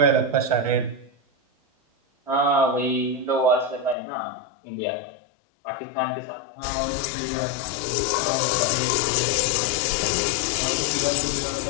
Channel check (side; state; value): right; drops out; at 4.0 s